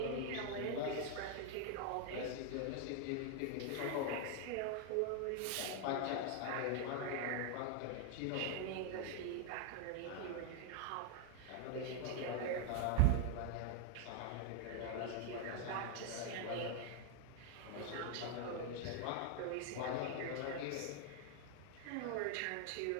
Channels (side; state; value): both; different; correlation 0.00